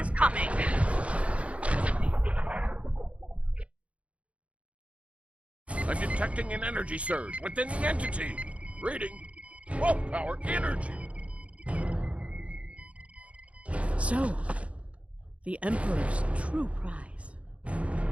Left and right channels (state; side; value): late; left; 0.063 ms